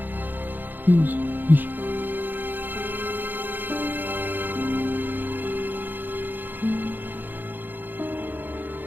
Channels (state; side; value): late; left; 0.089 ms